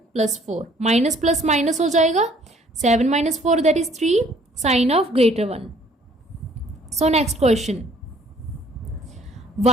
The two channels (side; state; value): both; normal; correlation 0.59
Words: + 4, माइनस प्लस माइनस हो जाएगा, 7 - 4 that is 3, sign of greater 1. So next question,